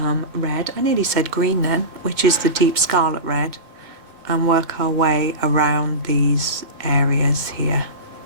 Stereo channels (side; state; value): left; late; 2.2 ms